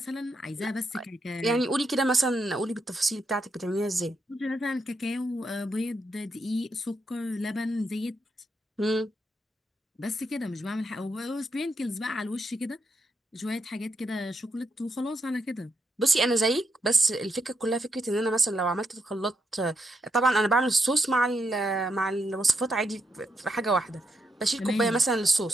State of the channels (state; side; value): normal; both; correlation 0.81